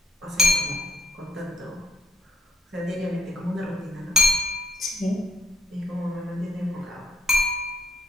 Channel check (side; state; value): both; normal; correlation 0.68